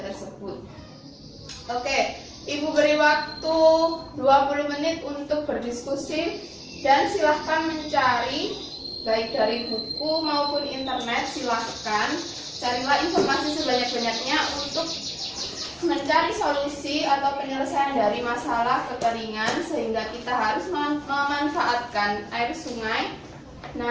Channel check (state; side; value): identical; both; correlation 1.00